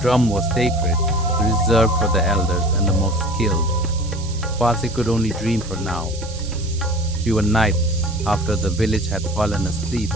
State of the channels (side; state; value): right; noise; hiss, 15 dB below the sound